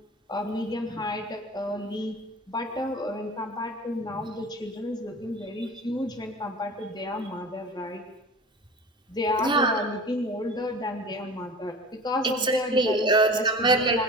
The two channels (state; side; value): normal; both; correlation 0.37